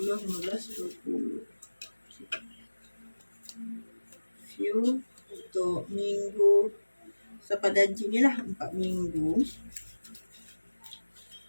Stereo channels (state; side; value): inverted; both; correlation -1.00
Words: 15, 20. Fuel untuk minggu sampai gaji ni lah, 4 minggu.